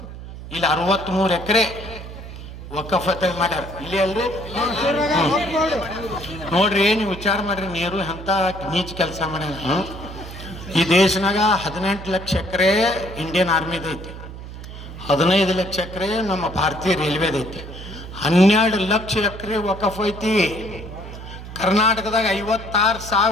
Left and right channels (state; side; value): noise; right; hum, 12 dB below the sound